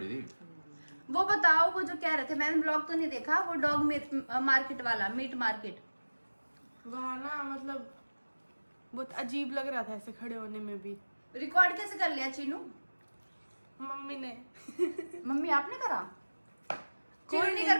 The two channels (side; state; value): both; inverted; correlation -1.00